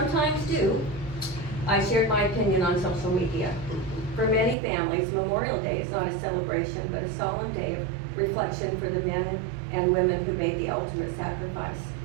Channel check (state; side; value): drops out; left; at 4.5 s